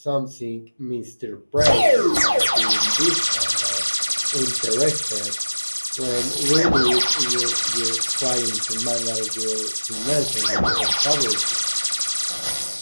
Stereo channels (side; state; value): both; inverted; correlation -1.00